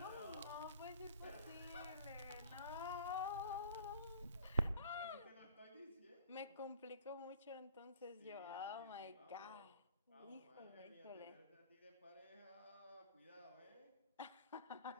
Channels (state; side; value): inverted; both; correlation -0.52